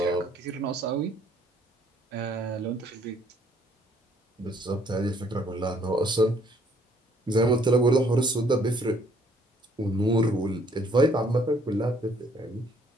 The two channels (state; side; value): normal; both; correlation 0.63